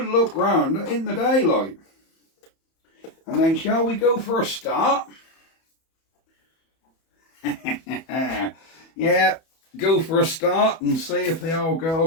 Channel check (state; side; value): late; right; 31 ms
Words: look round in the daylight. And then shall we go for a start? Yeah, go for a start and see if the old